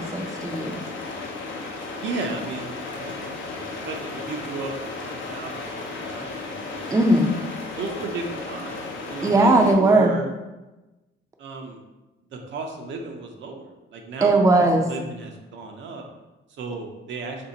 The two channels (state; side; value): normal; both; correlation 0.61